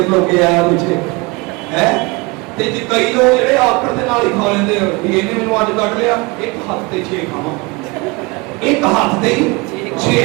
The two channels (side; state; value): left; quieter; 26.0 dB